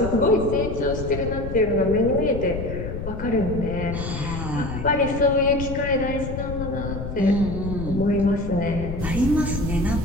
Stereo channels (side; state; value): left; noise; rumble, 6 dB below the sound